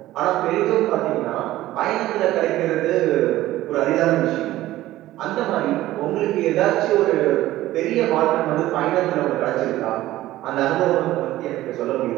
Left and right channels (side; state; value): left; quieter; 15.5 dB